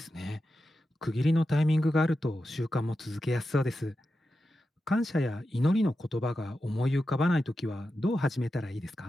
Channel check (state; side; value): normal; both; correlation 0.90